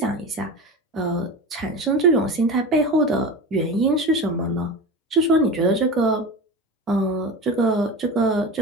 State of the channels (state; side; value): normal; both; correlation 0.28